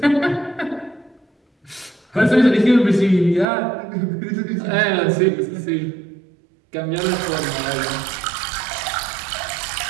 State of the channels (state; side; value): drops out; left; at 3.5 s